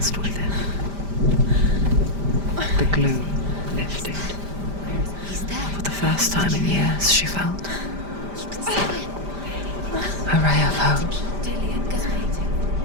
with him. The gloom lifted. He's there. For the first time in years, she felt You can see him. a ray of hope. Dillian, go waiting.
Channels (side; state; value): left; late; 5.0 ms